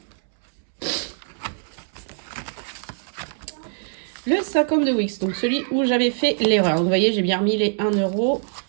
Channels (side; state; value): left; silent; 63 dB below the other